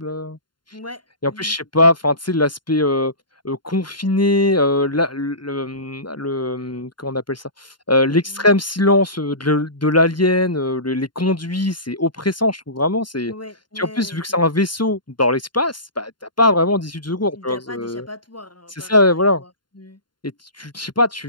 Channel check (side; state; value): right; late; 0.72 ms